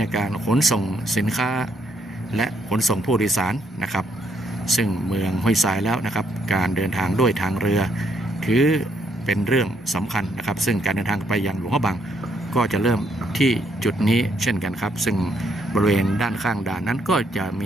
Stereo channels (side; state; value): both; normal; correlation 0.73